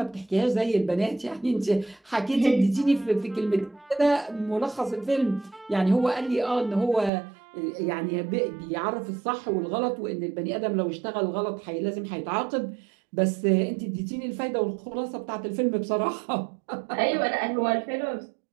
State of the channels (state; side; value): drops out; left; at 7.1 s